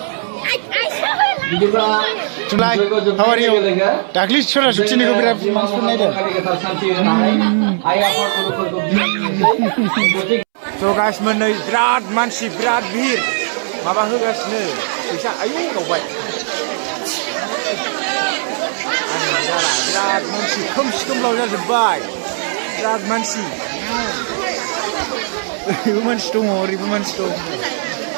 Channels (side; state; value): left; silent; 68 dB below the other